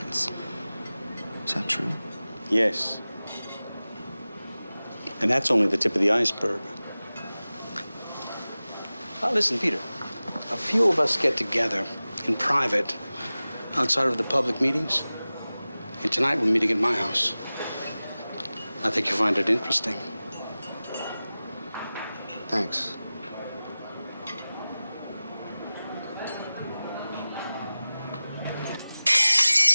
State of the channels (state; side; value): inverted; both; correlation -0.97